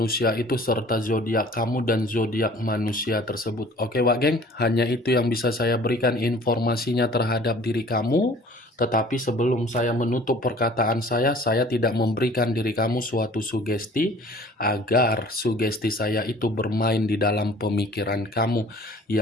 itu serta zodiak kamu dan zodiak manusia tersebut. Oke, Wak Geng, hanya itu yang bisa saya berikan informasinya terhadap diri kamu. Tetapi sebelum saya menutup perkataan saya tidak memberikan diri kamu suatu sugesti agar sugesti saya itu bermain di dalam pemikiran kamu.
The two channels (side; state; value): both; normal; correlation 0.50